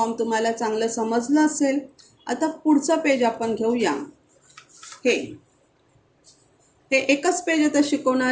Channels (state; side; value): identical; both; correlation 1.00